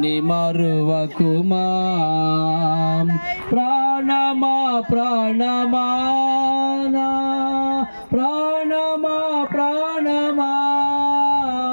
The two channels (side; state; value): both; inverted; correlation -1.00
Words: మరువకుమా. ప్రాణమా ప్రాణమా నా ప్రాణమా ప్రాణమా,